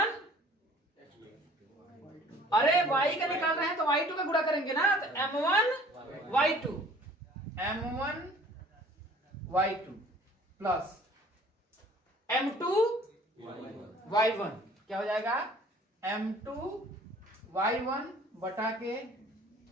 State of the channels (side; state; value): both; normal; correlation 0.52